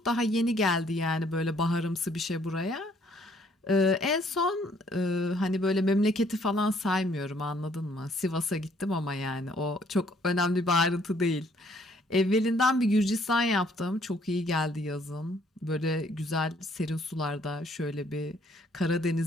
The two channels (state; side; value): normal; both; correlation 0.64